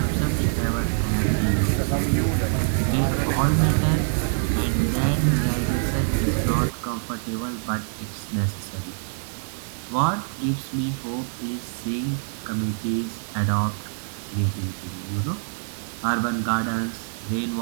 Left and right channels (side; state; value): left; silent; digital silence